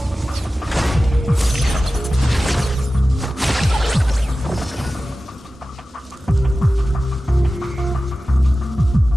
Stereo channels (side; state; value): both; normal; correlation 0.95